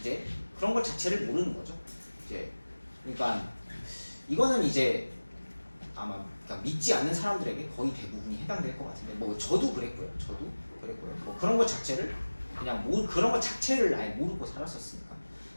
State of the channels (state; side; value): inverted; both; correlation -1.00